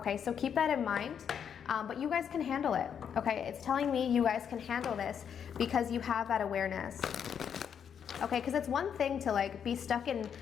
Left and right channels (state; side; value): quieter; right; 7.9 dB